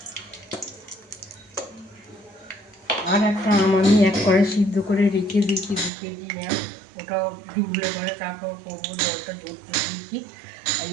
আর একটা আম আমি 1 কড়াই সিদ্ধ করে রেখে দিয়েছি, 2 কেজি আম, ওটাও ডুবলে পরে তারপর করবো, জলটা ঝরতে দিয়েছি। আর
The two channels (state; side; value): drops out; left; at 5.9 s